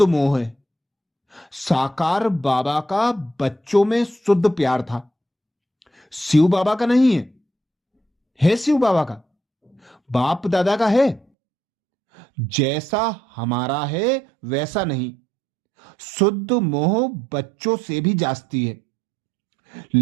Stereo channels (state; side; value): drops out; left; at 11.2 s